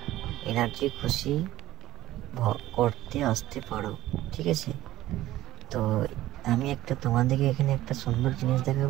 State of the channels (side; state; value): left; quieter; 15.4 dB